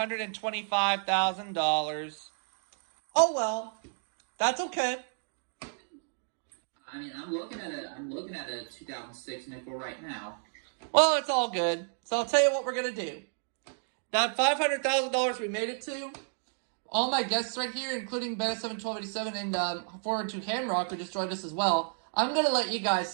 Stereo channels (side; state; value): left; silent; digital silence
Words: Oh well. That's okay. I mean, I'm looking at a 2006 nickel right now. Well, it's all good. So I'll tell you what we're going to do. That $500,000 we made it to, all my guests right here, including Beta71287 and 412 Hamrock, who just joined us as well, I'm going to let you guys